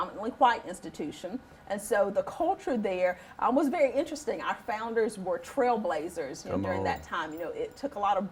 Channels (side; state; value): both; identical; correlation 1.00